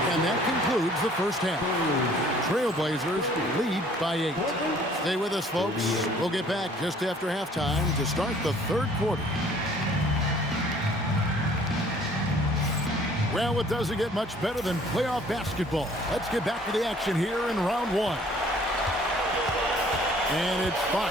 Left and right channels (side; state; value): both; normal; correlation 0.56